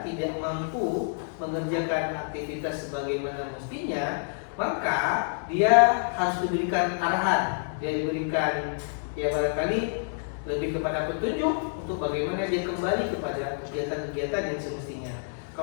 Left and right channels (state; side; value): silent; right; 59 dB below the other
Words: tidak mampu mengerjakan aktivitas sebagaimana mestinya, maka dia harus diberikan arahan, dia diberikan barangkali lebih kepada petunjuk untuk bagaimana dia kembali kepada kegiatan-kegiatan yang semestinya.